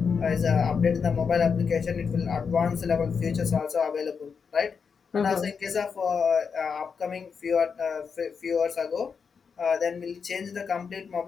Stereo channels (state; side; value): quieter; right; 5.9 dB